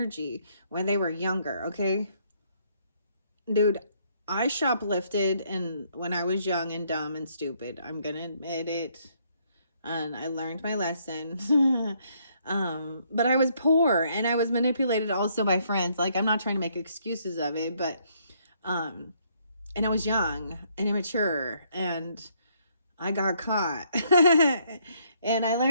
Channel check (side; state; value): both; inverted; correlation -0.69